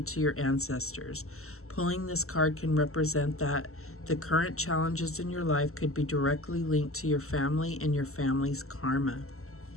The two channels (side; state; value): right; late; 0.63 ms